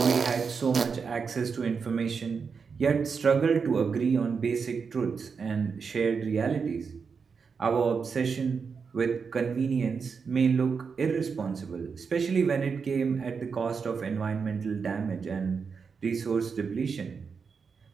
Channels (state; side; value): quieter; left; 5.6 dB